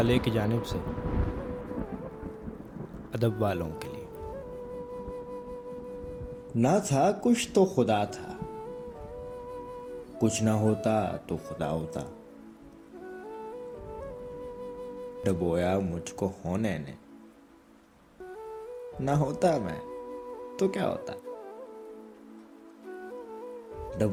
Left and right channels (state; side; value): identical; both; correlation 1.00